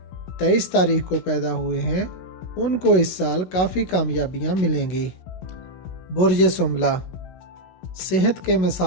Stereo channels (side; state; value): right; late; 16 ms